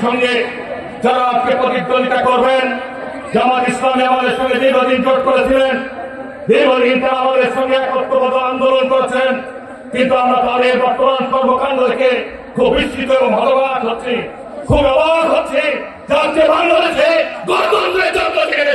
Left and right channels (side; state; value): both; identical; correlation 1.00